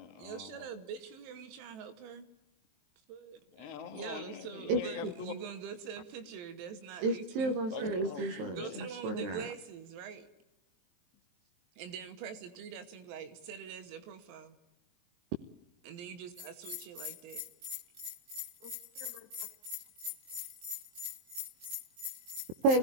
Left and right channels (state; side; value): late; left; 23 ms